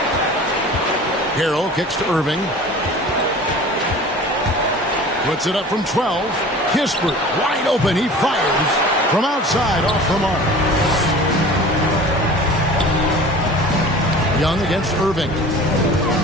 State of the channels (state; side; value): normal; both; correlation 0.41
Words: Harrell kicks to Irving. Puts it up from 12. Kispert wide open. He fires from outside off the mark. Young against Irving.